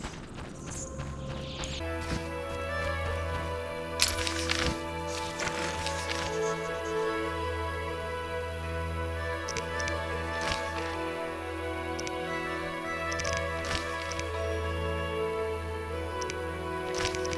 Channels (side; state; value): both; identical; correlation 1.00